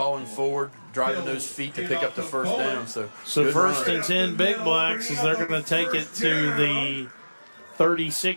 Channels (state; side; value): inverted; both; correlation -1.00